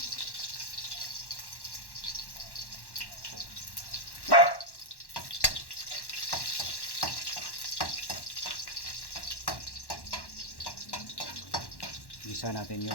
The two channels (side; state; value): right; late; 1.1 ms